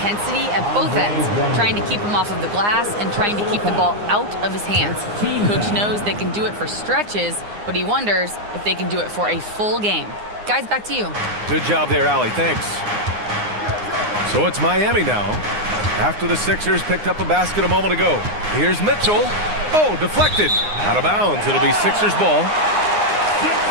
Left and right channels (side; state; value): left; late; 9.7 ms